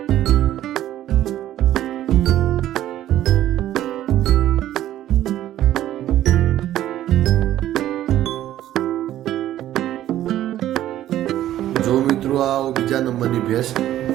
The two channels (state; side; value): quieter; left; 12.9 dB